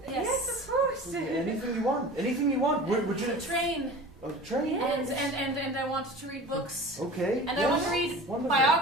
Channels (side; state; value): both; normal; correlation 0.37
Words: Yes, of course. Anything you want. Anything you want. Would you? a train, A train. and I want to read books, Okay. and yes. I want to read Wonderful.